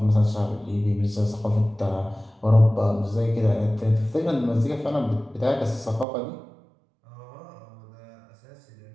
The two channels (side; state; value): left; drops out; at 6.1 s